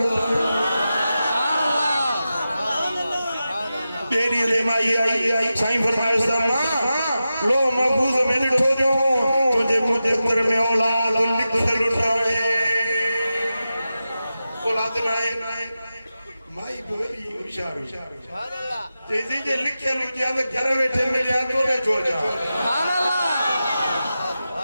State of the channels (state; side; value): inverted; both; correlation -0.92